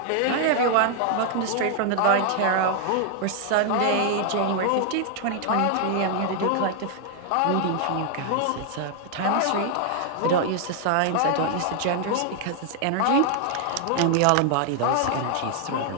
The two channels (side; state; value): both; different; correlation 0.00